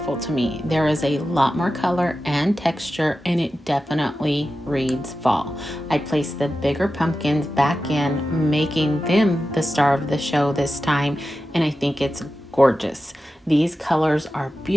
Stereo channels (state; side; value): normal; both; correlation 0.92